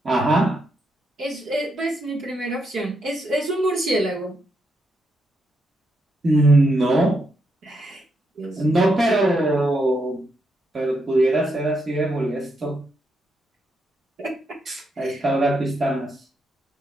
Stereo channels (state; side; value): normal; both; correlation 0.80